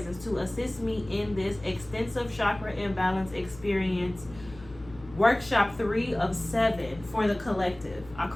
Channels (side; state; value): left; noise; hum, 19 dB below the sound